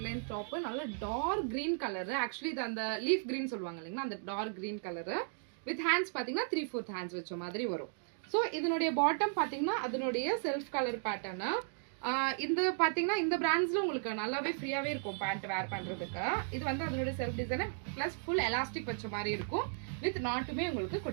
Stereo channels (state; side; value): silent; left; digital silence